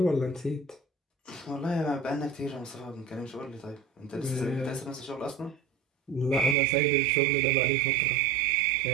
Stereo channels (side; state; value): left; drops out; at 6.6 s